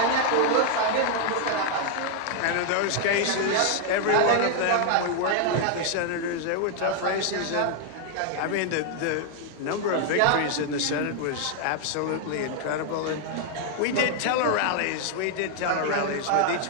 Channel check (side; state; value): both; different; correlation 0.00